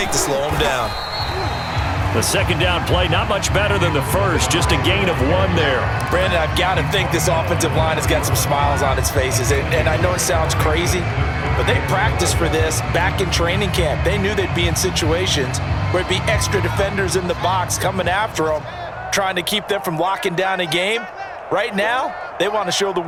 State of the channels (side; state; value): both; identical; correlation 1.00